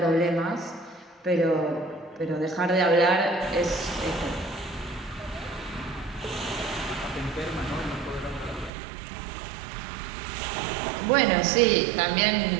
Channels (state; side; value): drops out; left; at 8.7 s